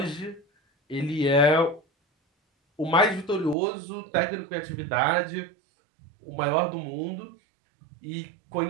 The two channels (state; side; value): drops out; left; at 3.6 s